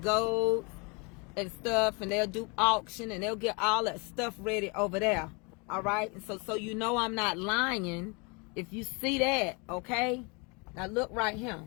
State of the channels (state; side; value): quieter; right; 30.9 dB